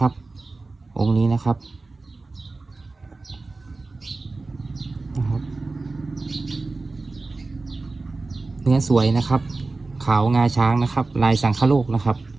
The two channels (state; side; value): quieter; left; 3.5 dB